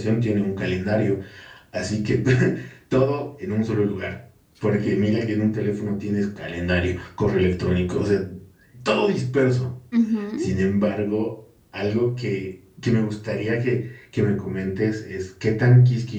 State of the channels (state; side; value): identical; both; correlation 1.00